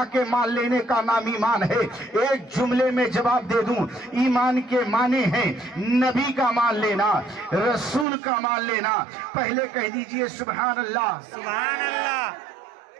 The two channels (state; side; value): drops out; left; at 8.1 s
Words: کے مان لینے کا نام ایمان ہے؟ ایک جملے میں جواب دے دوں، ایمان کے معنی ہیں نبی کا مان لینا، رسول کا مان لینا۔ پہلے کہہ دیجئے سبحان اللہ، سبحان اللہ۔